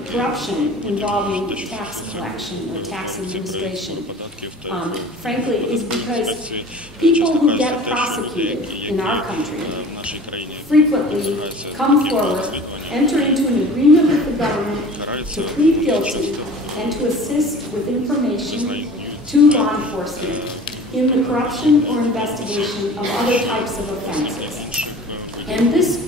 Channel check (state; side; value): normal; both; correlation 0.43